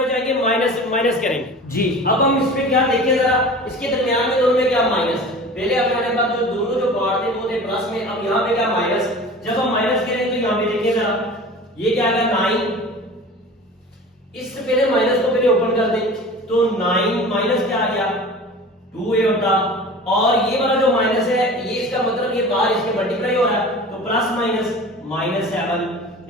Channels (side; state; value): both; normal; correlation 0.38